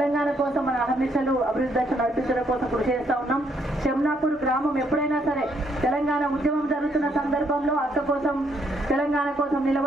కోసం మన అహర్నిశలు అభివృద్ధి దశ నడిపించడం కోసం కృషి చేస్తా ఉన్నాం. చెమ్నాపూర్ గ్రామం ఎప్పుడైనా సరే తెలంగాణ ఉద్యమం జరుగుతున్న సందర్భంలో అక్క కోసం తెలంగాణ కోసం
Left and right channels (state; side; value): normal; both; correlation 0.71